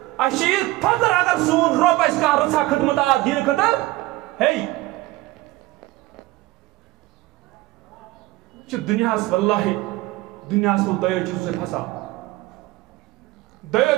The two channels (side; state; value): left; quieter; 18.8 dB